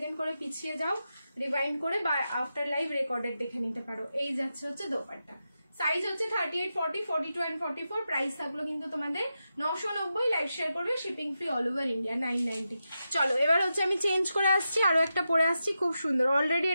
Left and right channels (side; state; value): both; inverted; correlation -0.89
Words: করে পিছিয়ে যাও রিভাইন্ড করে, বা আফটার লাইভ রেকর্ডেড দেখে নিতে পারো। এই যাচ্ছে হচ্ছে দোপাট্টা, সাইজ হচ্ছে 38, 40, 42 অ্যান্ড 44, প্রাইস থাকলো কিন্তু তোমাদের 990। লাইভ শেয়ার করবে, shipping free all over India, 990। চলো এবার হচ্ছে আমি চেঞ্জ করে আসছি, আরো একটা পরে আসছি, খুব সুন্দর। অলরেডি